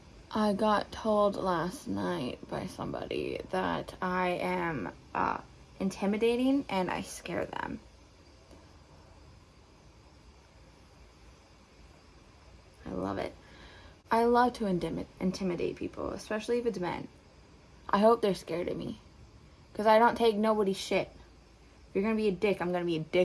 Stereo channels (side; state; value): both; identical; correlation 1.00